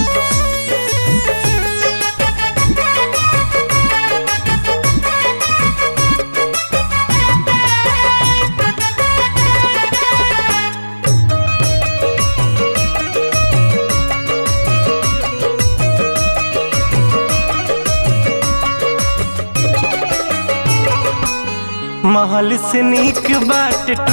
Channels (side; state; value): both; inverted; correlation -1.00